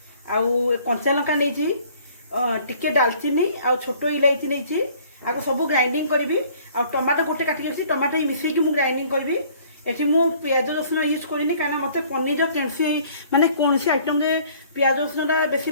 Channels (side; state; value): both; inverted; correlation -0.56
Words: आउ कंचा लंका नहीं टिके डालचीनी आउ छोट इलायची नहीं आपको सब ग्राइंडिंग करी आ टमाटो गोटे काटिक टमाटो मिसेक ग्राइंडिंग करी ये मु प्याज रसुण यूज करनी कहीं मत पनीर कैसी माने कौन सी आइटम प्याज रसुण बेसी